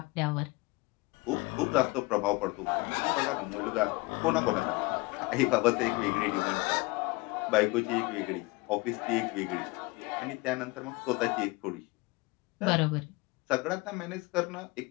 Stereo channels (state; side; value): quieter; right; 23.7 dB